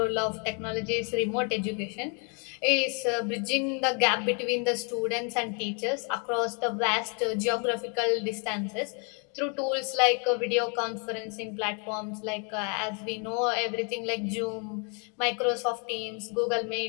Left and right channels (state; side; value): quieter; right; 37.6 dB